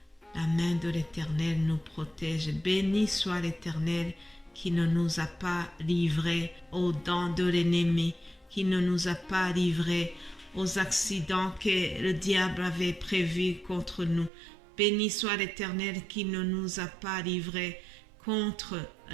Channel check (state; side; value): drops out; left; at 14.3 s